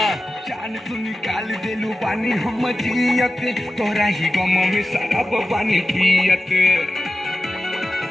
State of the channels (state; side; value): normal; both; correlation 0.93